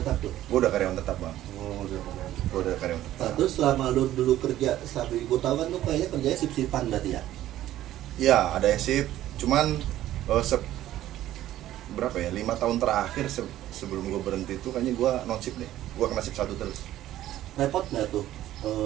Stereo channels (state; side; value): quieter; left; 13.5 dB